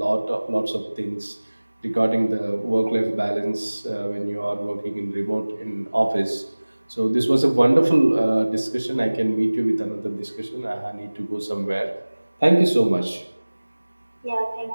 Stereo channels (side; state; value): both; inverted; correlation -1.00